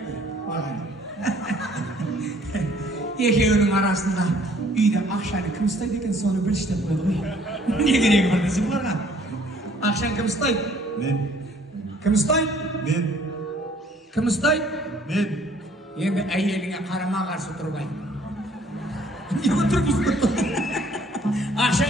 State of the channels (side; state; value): both; normal; correlation 0.59